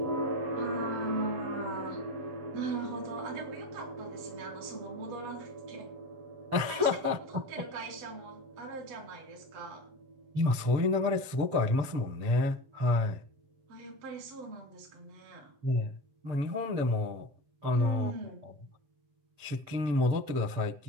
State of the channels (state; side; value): late; left; 6.8 ms